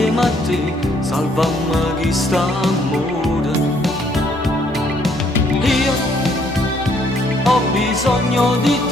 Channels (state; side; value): normal; both; correlation 0.67